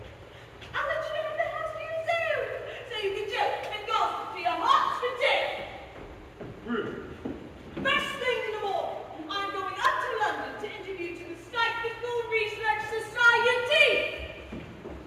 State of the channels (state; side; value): identical; both; correlation 1.00